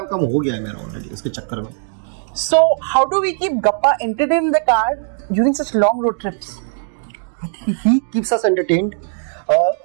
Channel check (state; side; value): silent; left; 67 dB below the other